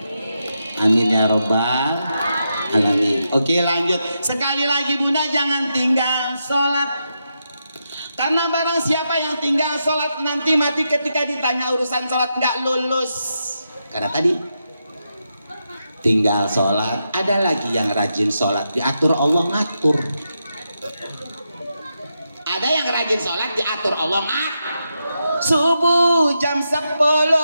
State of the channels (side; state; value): both; inverted; correlation -0.85